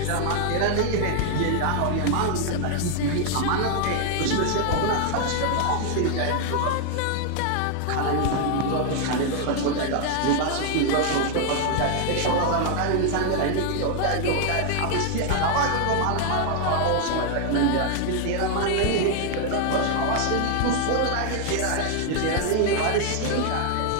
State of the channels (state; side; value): different; both; correlation 0.00